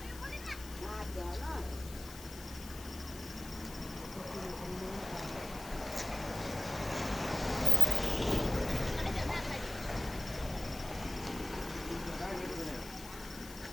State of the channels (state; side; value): noise; left; hiss, 15 dB below the sound